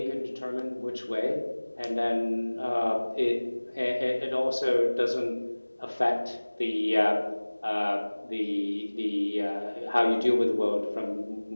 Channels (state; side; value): inverted; both; correlation -1.00